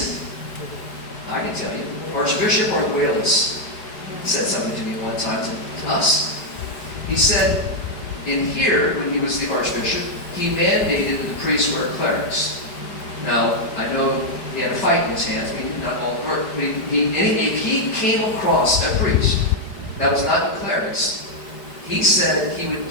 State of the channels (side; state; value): right; late; 4.9 ms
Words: it? I can tell you. Archbishop Arguelles said something to me one time to us. He said, in here, when he was the archbishop, he mandated the priests wear clerics. Now, I know he had a fight in his hands. Not all, but if he came across a priest that was not the clerics, he said he would